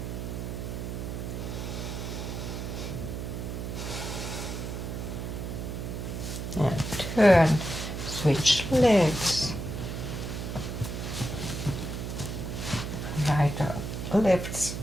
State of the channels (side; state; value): right; noise; hum, 5 dB below the sound